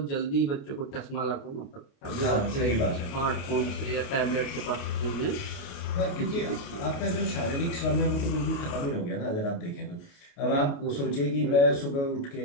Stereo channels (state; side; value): late; right; 29 ms